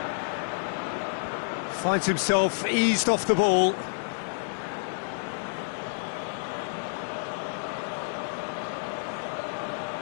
Finds himself eased off the ball.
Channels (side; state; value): right; silent; 59 dB below the other